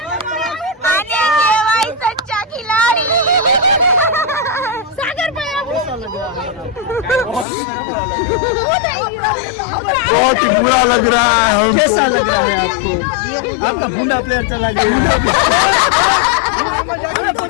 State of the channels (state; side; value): drops out; right; at 7.5 s